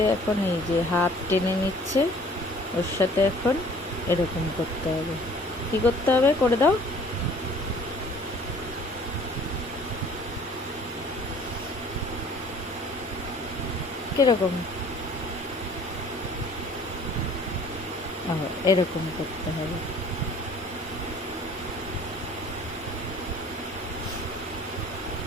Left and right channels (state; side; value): normal; both; correlation 0.52